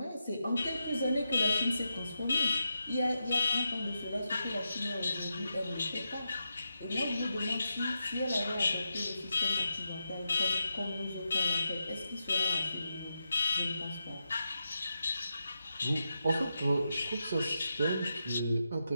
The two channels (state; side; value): inverted; both; correlation -0.87